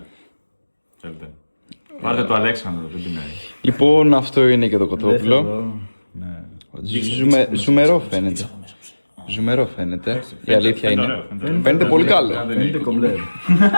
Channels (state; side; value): inverted; both; correlation -1.00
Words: Θέλετε. Πάρτε το Αλέξανδρο, δεν πεινάει. Λοιπόν, αυτό είναι και το κοτόπουλο. Ναι. Ζουμερό φαίνεται. Ζουμερό φαίνεται. Η αλήθεια είναι. Φαίνεται πολύ καλό. Φαίνεται κομπλέ.